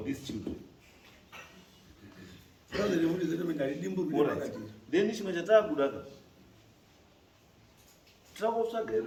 these children. Then chimwe chataakuda tirakutsvaga here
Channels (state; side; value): identical; both; correlation 1.00